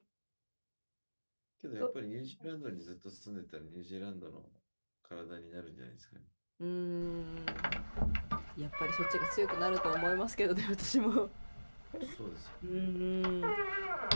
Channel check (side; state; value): both; inverted; correlation -1.00